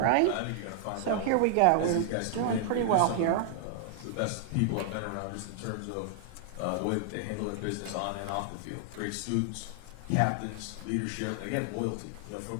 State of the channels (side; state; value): both; different; correlation 0.00